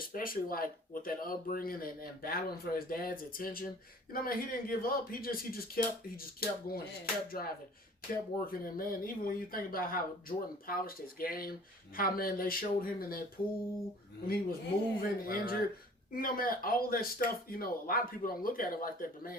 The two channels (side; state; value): both; normal; correlation 0.49